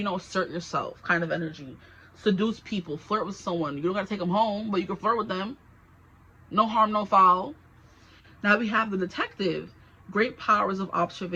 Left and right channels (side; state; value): both; identical; correlation 1.00